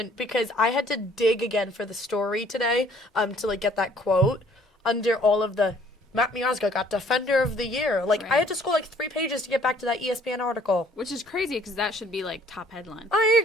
because I had to dig again for the story today to, like, get that quote under all of the Matt Miazga got Defender of the Year. Like, I Right. had to scroll, like, 3 pages to get back to that ESPN article. Which is crazy because that should be, like, top headline. I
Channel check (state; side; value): normal; both; correlation 0.59